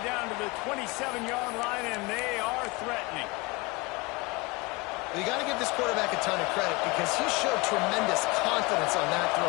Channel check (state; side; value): quieter; right; 25.0 dB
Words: to the 27-yard line, and they are threatening. You got to give this quarterback a ton of credit because he showed tremendous confidence on that